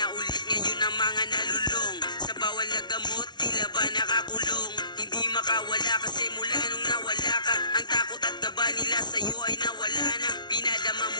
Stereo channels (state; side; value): late; right; 0.20 ms